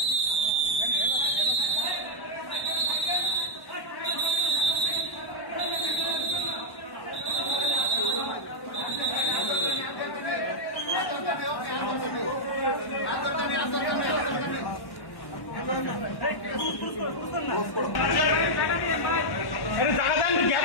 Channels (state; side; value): late; right; 1.1 ms